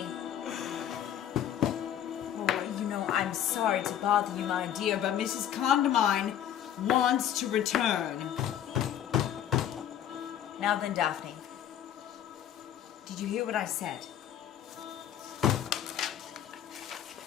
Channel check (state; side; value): quieter; right; 10.3 dB